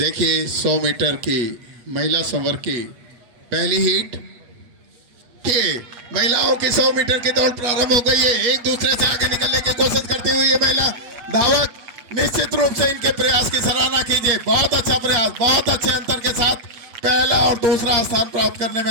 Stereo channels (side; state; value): left; late; 8.3 ms